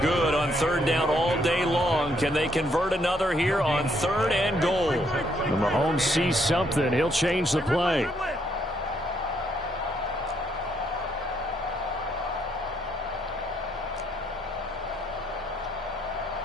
on 3rd down all day long. Can they convert another here on 3rd and goal? When Mahomes sees something, he'll change the play.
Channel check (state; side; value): normal; both; correlation 0.72